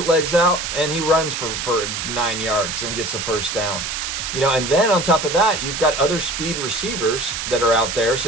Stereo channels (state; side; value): noise; right; hiss, 4 dB below the sound